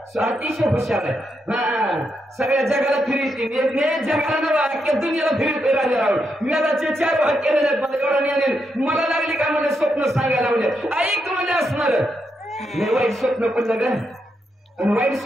अतिशय हुशार आहे. सगळ्या जगाला फिरती जगाला नवा अख्ख्या दुनियाला फिरतोय राजाराम. वेदाचे 4 भाग केलेले आहेत. मला एवढा नाही मला लागली का म्हणजे स्वप्न सांगायला लावले. ऐक म्हणजे असणार नाही वाईट स्वप्न पडलं का. आणि वाईट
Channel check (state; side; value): normal; both; correlation 0.82